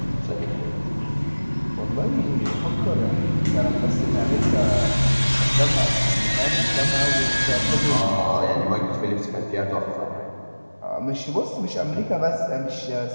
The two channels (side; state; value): both; inverted; correlation -1.00